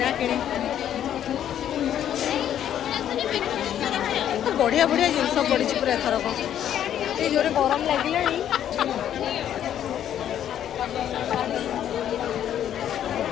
ବଢିଆ ବଢିଆ ଜିନିଷ ପଡିଛି ପୁରା ଏଥରକ। ଏଇ ଜୋରେ ଗରମ ଲାଗିଲାଣି।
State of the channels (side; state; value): right; quieter; 10.4 dB